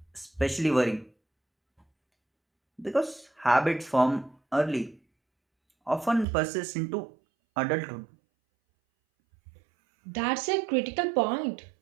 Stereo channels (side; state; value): left; drops out; at 6.2 s